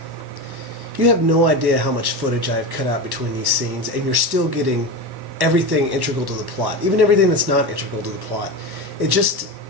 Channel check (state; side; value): late; left; 1.1 ms